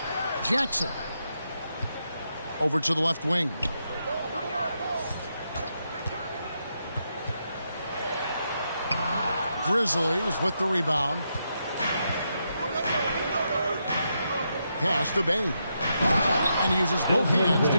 Jackson. Over to the left wing. Grizzlies with the rebound. Pass to Bane. And he uses both hands to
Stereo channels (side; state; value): both; inverted; correlation -0.82